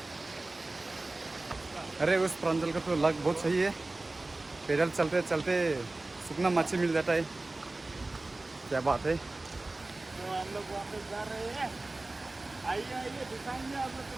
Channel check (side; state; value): left; quieter; 3.0 dB